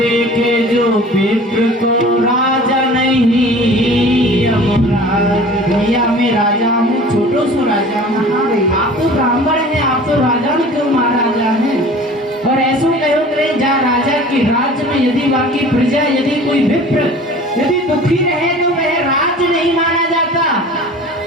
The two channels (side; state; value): both; normal; correlation 0.44